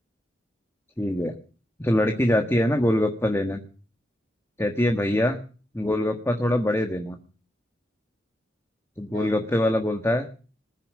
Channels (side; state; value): both; normal; correlation 0.84